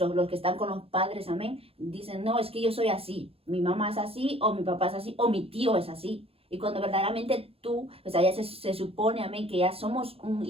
que están con los padres, amén, dicen, no, es que yo soy así, mi mamá es así, o mi papá es así, o mi tío es así. Y cuando verdaderamente tú, o sea, ya se supone, amén, que ya somos un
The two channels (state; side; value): late; left; 0.28 ms